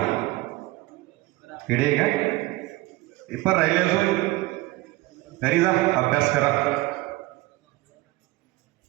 किडे काय पेपर राहिले अजून, घरी जा, अभ्यास करा,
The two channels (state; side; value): quieter; left; 20.1 dB